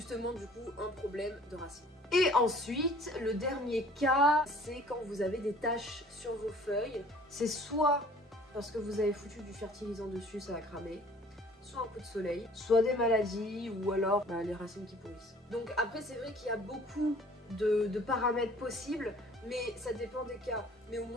du coup, un problème de racines. Et ensuite, le dernier cas, c'est quand vous avez des taches sur vos feuilles. C'est soit parce que vous avez foutu du fertilisant dessus, ça va cramer. Soit un coup de soleil, soit des maladies, ou alors bah, les racines qui pourrissent. Donc après, c'est vrai qu'il y a beaucoup de paramètres possibles, mais ça dépend des cas. Mais au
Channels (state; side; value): normal; both; correlation 0.52